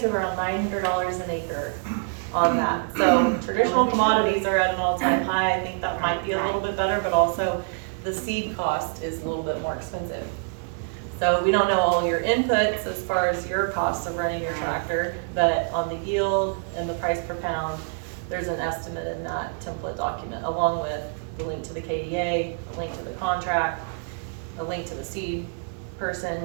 to around $900 an acre on that. So traditional commodities are at an all-time high. I think that might be a little bit better, but also the seed cost is a little bit more expensive. So we don't know all your inputs as far as your costs of running your tractor, but on the yield and the price per pound, there's an estimate in that template document, along with the link to the KDA, a link to the contract, a link to the seed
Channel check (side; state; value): left; silent; 61 dB below the other